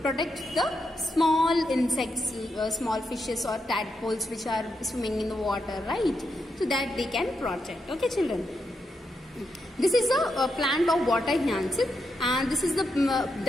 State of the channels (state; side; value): normal; both; correlation 0.83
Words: protect the small insects, small fishes or tadpoles which are swimming in the water, right? So that they can protect. Okay, children. This is a plant of water hyacinth, and this is the